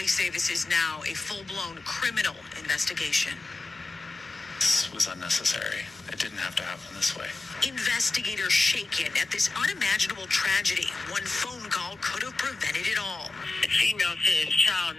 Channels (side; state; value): right; quieter; 3.2 dB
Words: say this is now a full-blown criminal investigation. This was unnecessary. It didn't have to happen this way. Investigators shaken at this unimaginable tragedy. One phone call could have prevented it all. The female says child